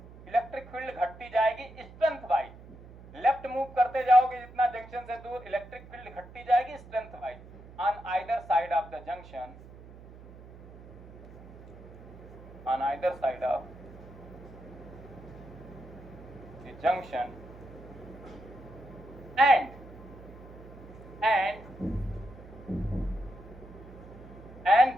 इलेक्ट्रिक फील्ड घटती जाएगी स्ट्रेंथ वाइज। लेफ्ट मूव करते जाओगे जितना जंक्शन से दूर, इलेक्ट्रिक फील्ड घटती जाएगी strength wise on either side of the junction, on either side of the junction and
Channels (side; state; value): right; noise; hum, 18 dB below the sound